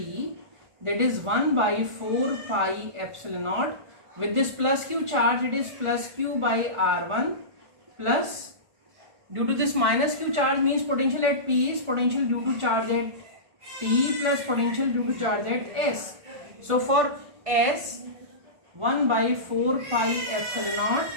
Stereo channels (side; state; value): left; late; 1.4 ms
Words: that is 1 by 4 pi epsilon naught. With this plus Q charge, it is plus Q by R1 plus, due to this minus Q charge means potential at P is potential due to charge at T plus potential due to charge at S. So for S, 1 by 4 pi epsilon naught,